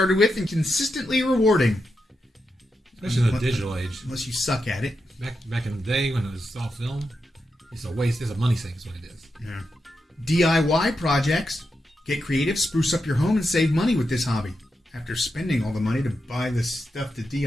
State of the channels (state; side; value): normal; both; correlation 0.87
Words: with and consistently rewarding. Especially in the digital age. Unless you suck at it. Back in the day when it was all film, it's a waste. It's a money sink is what it is. Yeah. DIY projects. Get creative, spruce up your home, and save money with this hobby. After spending all the money to buy the stuff to